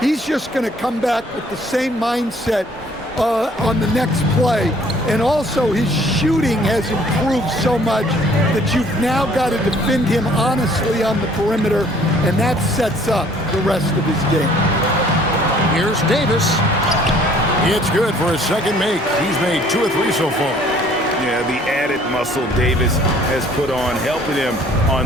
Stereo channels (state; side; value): normal; both; correlation 0.57